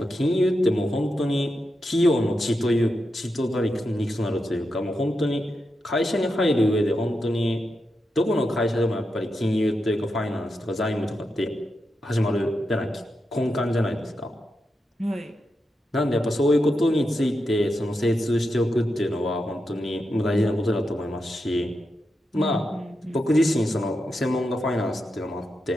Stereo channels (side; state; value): both; normal; correlation 0.87